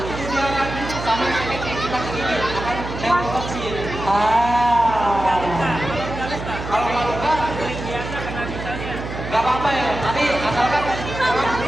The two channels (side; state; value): right; noise; hum, 8 dB below the sound